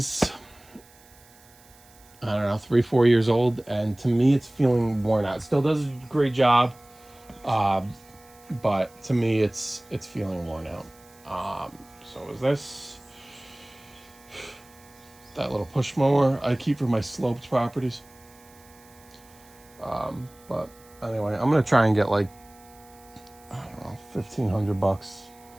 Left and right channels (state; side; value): noise; right; hiss, 26 dB below the sound